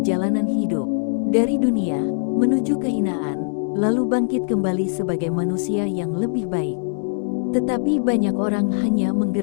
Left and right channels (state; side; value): silent; right; digital silence